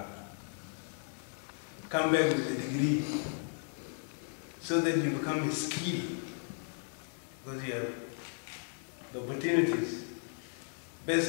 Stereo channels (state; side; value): silent; right; 54 dB below the other